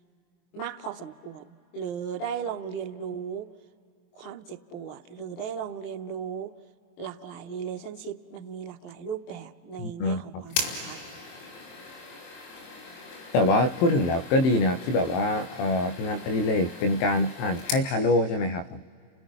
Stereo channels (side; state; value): right; late; 23 ms